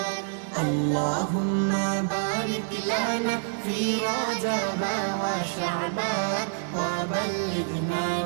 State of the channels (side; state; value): left; silent; 60 dB below the other